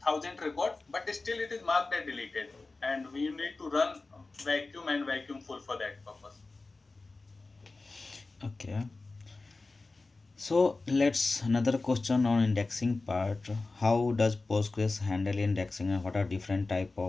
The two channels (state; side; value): quieter; right; 3.5 dB